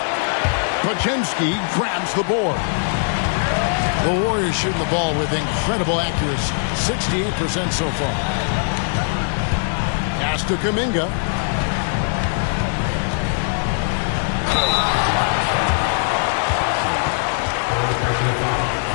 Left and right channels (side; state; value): right; silent; digital silence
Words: Podziemski grabs the board. The Warriors shooting the ball with incredible accuracy. 68% so far. Pass to Kuminga.